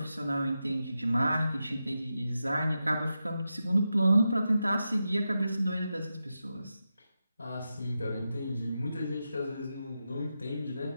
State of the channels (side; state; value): both; inverted; correlation -0.89